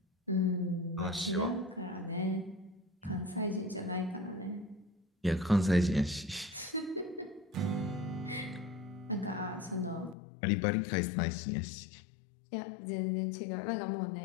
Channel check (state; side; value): drops out; right; at 10.2 s